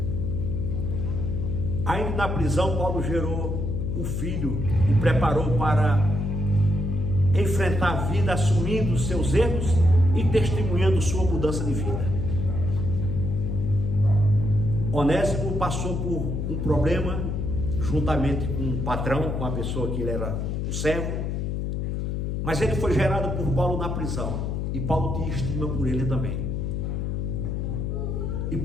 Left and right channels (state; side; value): noise; left; hum, 1 dB below the sound